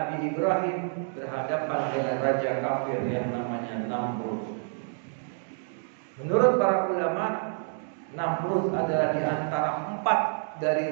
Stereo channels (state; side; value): silent; left; digital silence